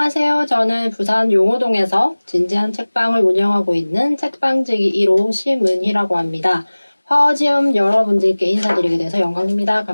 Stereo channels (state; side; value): inverted; both; correlation -1.00